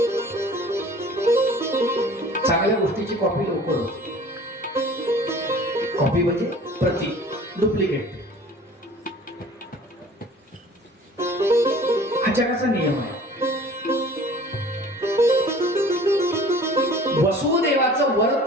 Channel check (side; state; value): both; normal; correlation 0.47